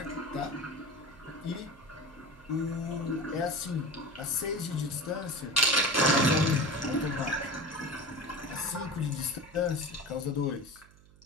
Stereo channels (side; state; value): right; noise; hum, 25 dB below the sound